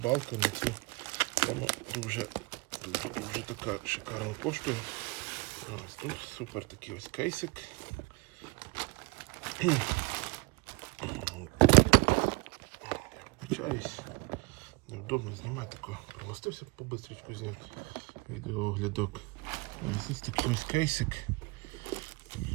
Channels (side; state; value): left; quieter; 26.9 dB